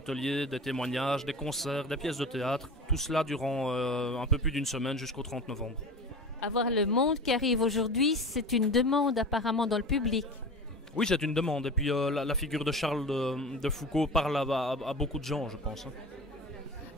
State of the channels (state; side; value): normal; both; correlation 0.32